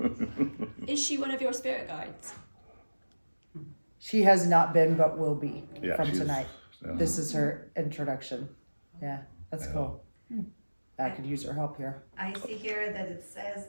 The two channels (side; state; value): both; inverted; correlation -1.00